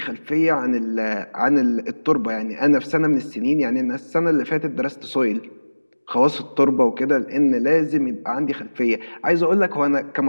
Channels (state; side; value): inverted; both; correlation -1.00